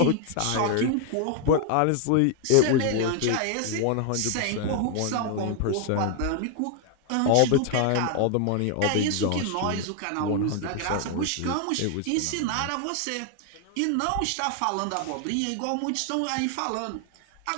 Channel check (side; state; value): both; different; correlation 0.00